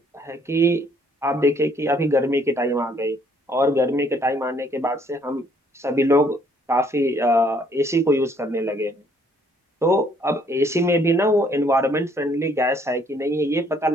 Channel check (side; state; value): both; normal; correlation 0.65